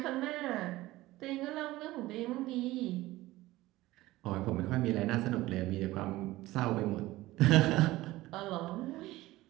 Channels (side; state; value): left; quieter; 17.7 dB